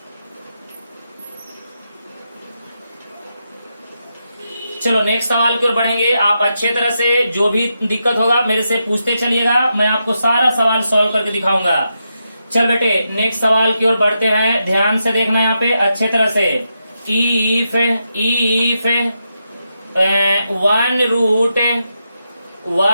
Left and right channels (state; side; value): inverted; both; correlation -0.85